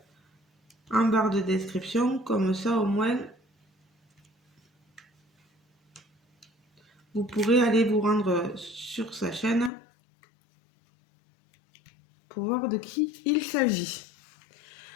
en barre de description. Comme ça, au moins, vous pourrez aller vous rendre sur sa chaîne. pour voir de qui il s'agit.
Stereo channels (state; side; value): drops out; right; at 9.7 s